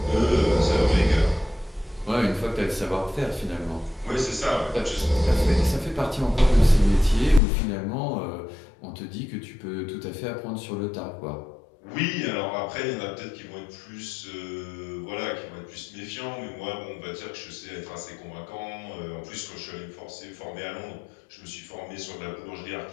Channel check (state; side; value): drops out; right; at 7.4 s